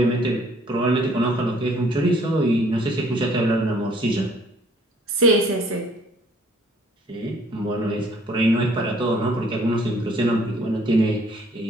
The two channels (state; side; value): normal; both; correlation 0.60